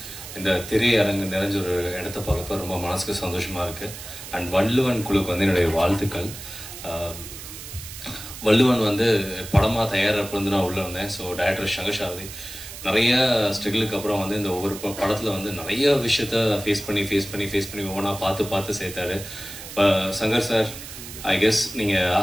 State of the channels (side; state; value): right; noise; hiss, 12 dB below the sound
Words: இந்த திரையரங்கு நிறைஞ்ச ஒரு இடத்த பார்க்கப்ப ரொம்ப மனசுக்கு சந்தோஷமா இருக்கு. அண்ட் வள்ளுவன் குழுக்கு வந்து என்னுடைய வாழ்த்துக்கள். வள்ளுவன் வந்து படமா தயாரிப்பு வந்து நான் உள்ள இருந்தேன். ஸோ டைரக்டர் சங்கர் சாரதி நிறைய ஸ்ட்ரகிளுக்கு அப்புறம் வந்து இந்த ஒவ்வொரு படத்துல வந்து நிறைய விஷயத்த ஃபேஸ் பண்ணி ஒவ்வொன்றா பார்த்து சேர்த்தாரு. சங்கர் சார், ஐ கெஸ் நீங்க